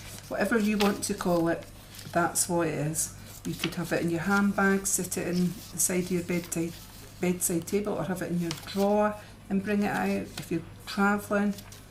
whatever you want to call it, that's what it is. You could have it in your handbag, sit it in the side of your bedside table, or have it in your drawer and bring it out. If you're travelling,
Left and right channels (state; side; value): identical; both; correlation 1.00